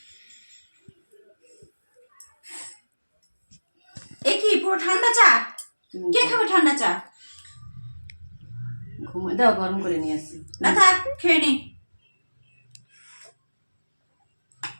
এ কি পুরো ঠান্ডা চা? কে খাবে ঠান্ডা চা? ঘুমাই দাও, গরম করে নিয়ে আসছি। না থাক, খেয়ে নি।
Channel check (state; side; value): inverted; both; correlation -1.00